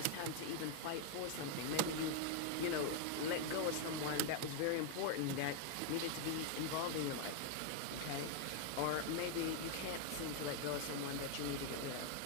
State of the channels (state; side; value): different; both; correlation 0.00